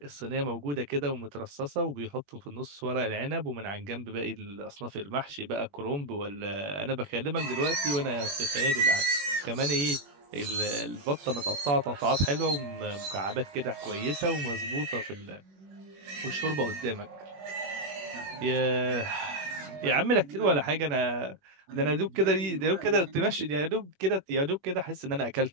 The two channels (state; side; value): late; left; 21 ms